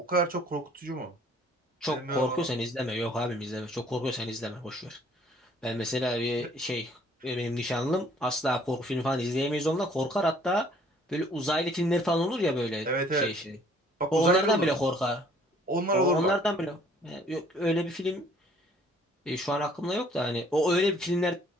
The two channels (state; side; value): normal; both; correlation 0.59